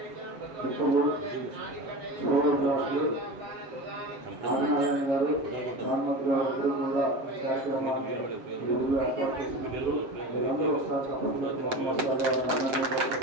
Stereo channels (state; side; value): late; left; 7.7 ms